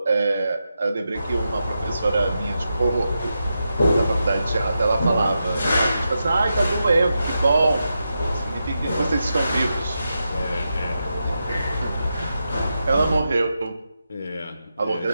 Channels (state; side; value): inverted; both; correlation -0.88